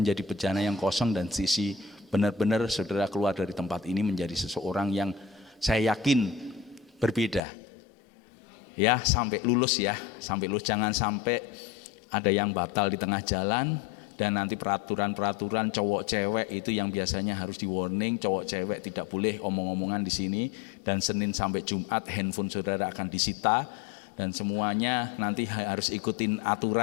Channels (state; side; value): drops out; right; at 7.4 s